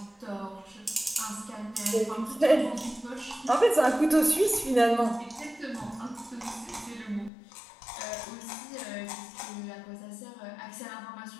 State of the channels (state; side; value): drops out; right; at 7.3 s